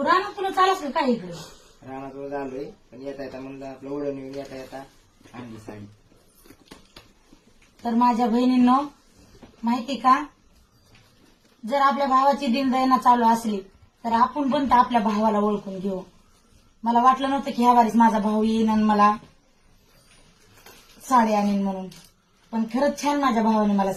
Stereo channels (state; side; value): identical; both; correlation 1.00